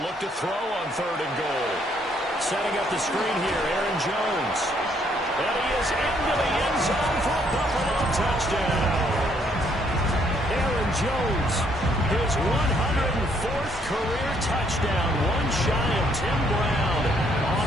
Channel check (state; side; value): normal; both; correlation 0.69